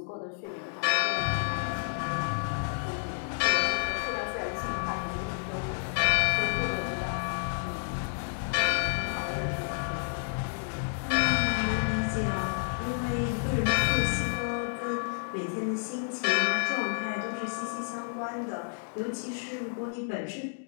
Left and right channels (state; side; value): silent; right; digital silence